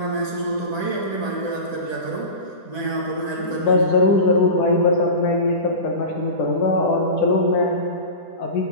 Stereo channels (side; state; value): right; late; 10 ms